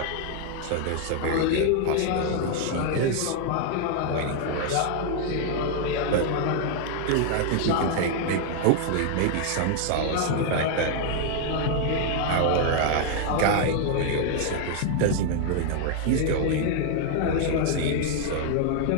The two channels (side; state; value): both; different; correlation 0.00